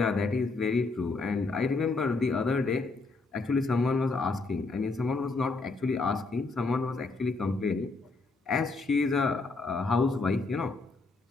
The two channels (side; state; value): right; quieter; 3.7 dB